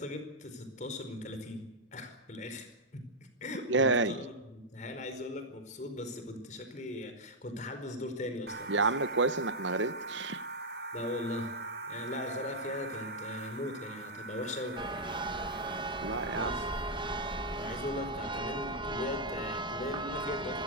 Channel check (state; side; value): normal; both; correlation -0.03